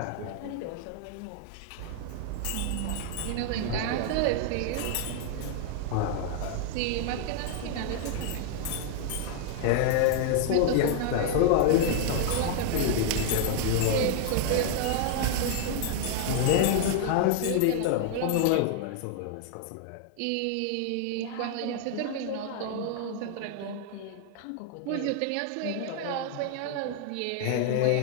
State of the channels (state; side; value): different; both; correlation 0.00